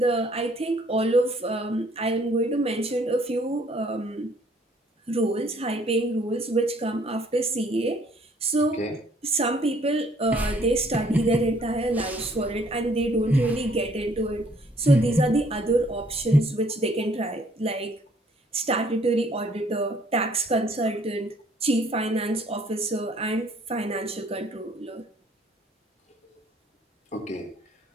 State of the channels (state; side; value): normal; both; correlation 0.61